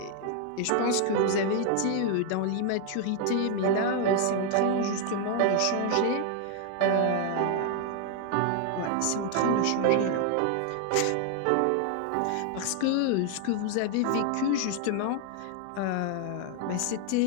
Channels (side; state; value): both; different; correlation 0.00